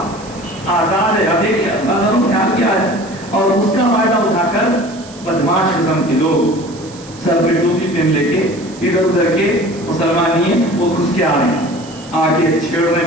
آزاد ہے، دیکھیے اللہ نے خیال کیا ہے، اور اس کا فائدہ اٹھا کر بدماش قسم کے لوگ سر پہ ٹوپی پہن لے کے ادھر ادھر کے مسلمان نہیں ہیں وہ گھس کے آ رہے ہیں، آ کے چھیڑ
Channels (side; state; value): right; noise; hiss, 20 dB below the sound